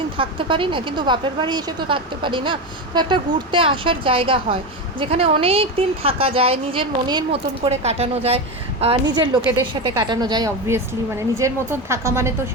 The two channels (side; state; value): both; normal; correlation 0.17